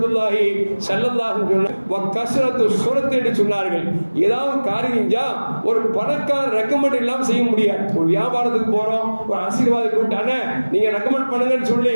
ஸல்லல்லாஹு அலைஹி வஸல்லம் என்று சொன்னார்கள். ஏதாவது காரியம் ஒரு பணக்கார ரெக்கமெண்ட் இல்லாம செய்ய முடியாது. ஒரு வியாபாரத்துக்கு போறோம், ஒரு ஆசீர்வாதம் கூட்டானே நீங்க ரெக்கமெண்ட் பண்ணுங்கன்னு சொல்லி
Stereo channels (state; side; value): inverted; both; correlation -1.00